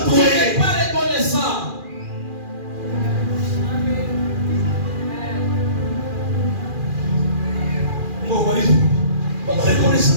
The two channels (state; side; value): late; left; 2.4 ms